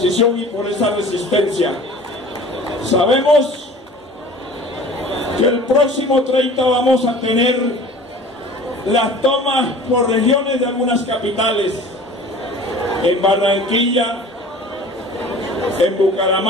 y por esa resistencia. Sabemos que el próximo 30 vamos a tener las tomas por regiones de algunas capitales, en Barranquilla, en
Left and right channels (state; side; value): normal; both; correlation 0.44